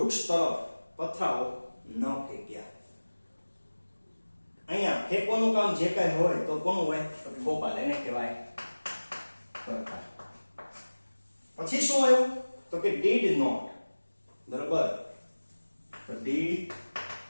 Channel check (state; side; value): inverted; both; correlation -1.00